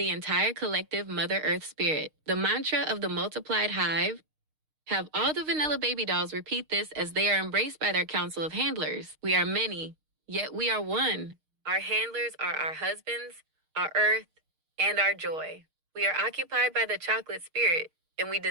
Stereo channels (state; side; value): late; left; 6.5 ms